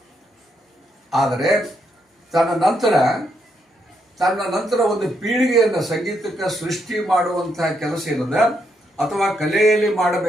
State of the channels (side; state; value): both; normal; correlation 0.78